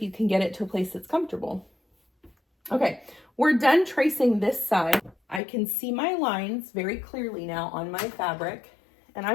you can get it to a place that's comfortable. Okay, we're done tracing this side. I can see my lines very clearly now on my fabric, and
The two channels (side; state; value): right; drops out; at 5.4 s